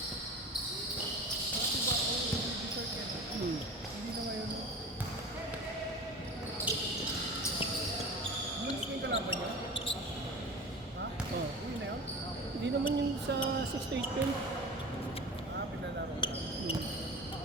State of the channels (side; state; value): both; normal; correlation 0.34